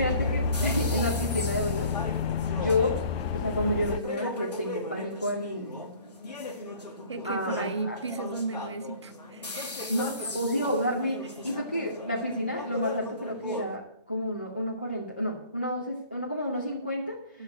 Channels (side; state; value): both; inverted; correlation -0.52